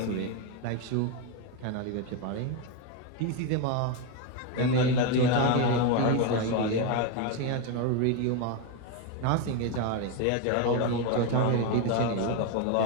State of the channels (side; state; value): both; different; correlation 0.03